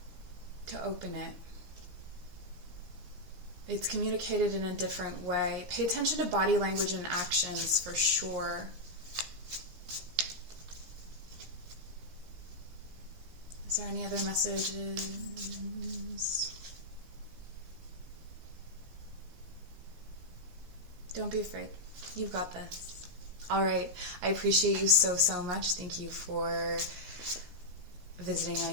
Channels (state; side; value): late; left; 17 ms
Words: To open it. It's communicated in a different way. Pay attention to body language and actions for sure. Is there any other messages? Don't be afraid. You've got this. All right. I appreciate you so much. Thank you for visiting my